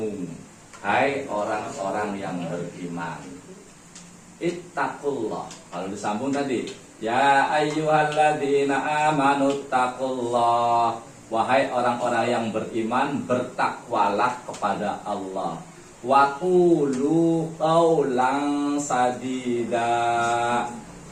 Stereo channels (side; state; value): both; identical; correlation 1.00